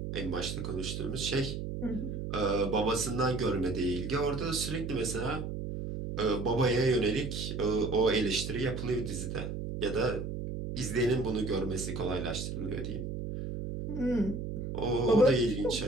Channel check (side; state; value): right; noise; hum, 5 dB below the sound